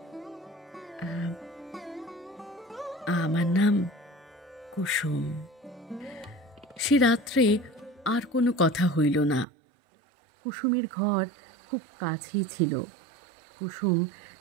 আমার নাম কুসুম। সে রাত্রে আর কোনো কথা হইল না। কুসুমের ঘর খুব কাছেই ছিল। কুসুম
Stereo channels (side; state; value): left; drops out; at 9.5 s